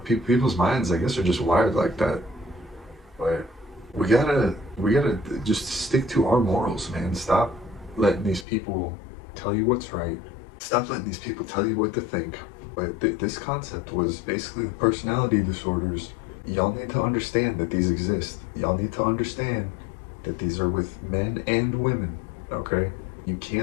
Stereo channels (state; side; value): drops out; right; at 8.5 s